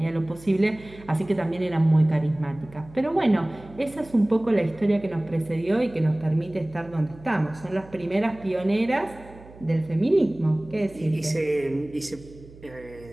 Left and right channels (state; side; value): noise; right; hum, 20 dB below the sound